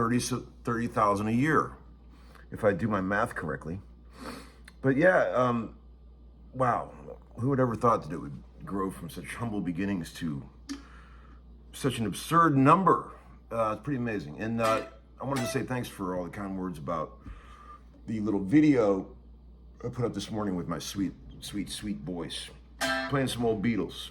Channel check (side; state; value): both; identical; correlation 1.00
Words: a year, if I do my math correctly. But yeah, wow, who would ever thought that it would grow from such humble beginnings to such an absurd number? It's pretty amazing. And I wanted to say thanks for all the kind words about the little video I put up this morning with my sweet voice, playing some old Beatles.